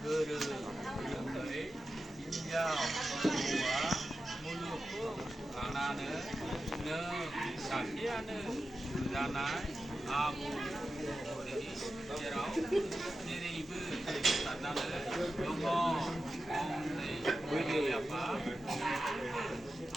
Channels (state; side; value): normal; both; correlation 0.92